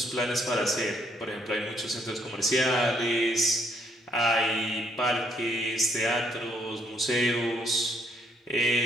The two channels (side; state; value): both; normal; correlation 0.69